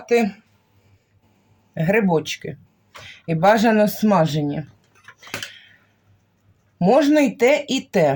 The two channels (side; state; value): both; identical; correlation 1.00